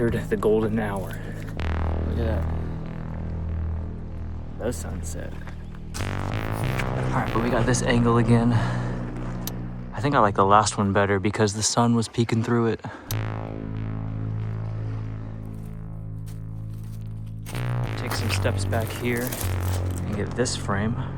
the golden hour. Look at that. The sunset. All right, but we got this angle again. I think I like the last one better because the sun was peeking through it. Take some steps back here and get this frame.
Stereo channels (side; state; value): both; identical; correlation 1.00